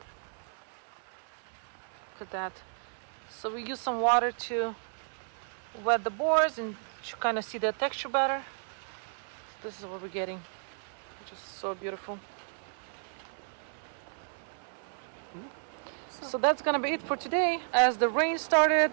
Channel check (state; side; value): silent; left; 56 dB below the other